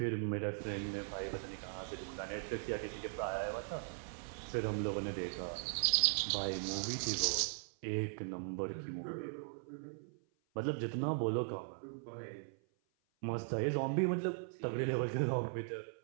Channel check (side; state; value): left; silent; 52 dB below the other